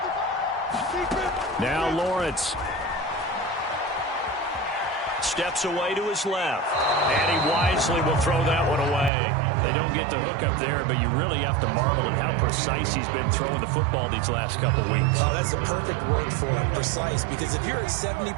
Now Lawrence steps away to his left, and he wisely will throw that one away. They don't get the hook up there, but you really have to marvel at how precise he's been throwing the football these last couple weeks. Oh, that's a perfect word for it, precise, because if you're at 70%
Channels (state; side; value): drops out; left; at 9.1 s